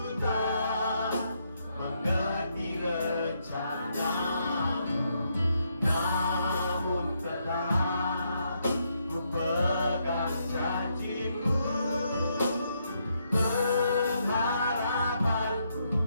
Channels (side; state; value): both; inverted; correlation -0.77